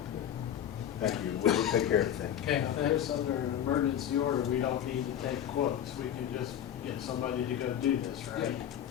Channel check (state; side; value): quieter; right; 10.1 dB